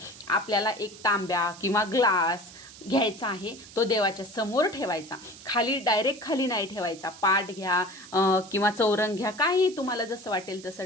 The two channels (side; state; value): right; noise; hiss, 18 dB below the sound